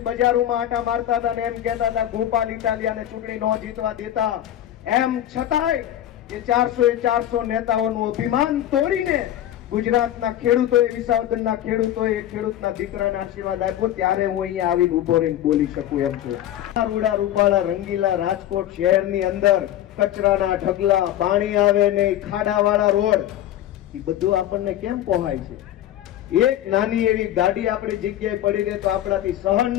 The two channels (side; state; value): right; quieter; 12.3 dB